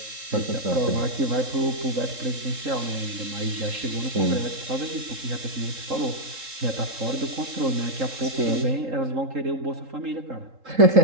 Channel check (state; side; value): late; left; 3.7 ms